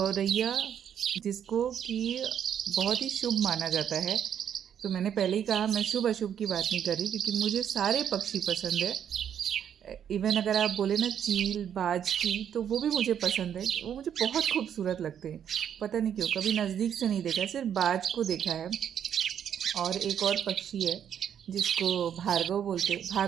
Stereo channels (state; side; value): quieter; left; 9.0 dB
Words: जिसको कि बहुत ही शुभ माना जाता है, तो मैंने पहले ही कहा मैं शुभ अशुभ की बात नहीं कर रही, क्योंकि मुझे सारे पक्षी पसंद है। इवन अगर आप बोले ना चील बाज की, तो वो भी मुझे पसंद है। वो मुझे बहुत खूबसूरत लगते हैं, पता नहीं क्यों। कभी नज़दीक से नहीं देखा, सिर्फ बाज को देखा है। और एक और पक्षी है जिसको भार्गव बोलते,